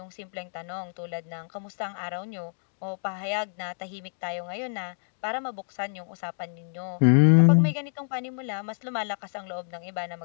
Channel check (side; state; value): right; silent; digital silence